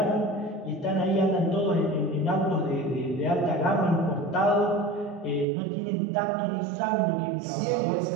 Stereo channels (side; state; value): left; drops out; at 5.5 s